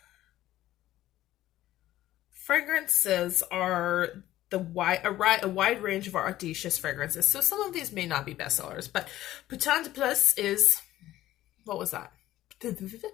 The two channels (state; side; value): quieter; right; 14.6 dB